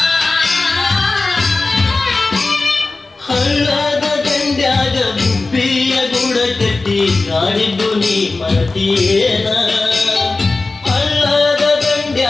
ಹಳ್ಳದ ದಂಡ್ಯಾಗ ಗುಬ್ಬಿಯ ಗುಡ ಕಟ್ಟಿ ಆಡಿದ್ದು ನೀ ಮರತಿಯೇನ ಹಳ್ಳದ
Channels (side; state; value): right; quieter; 3.5 dB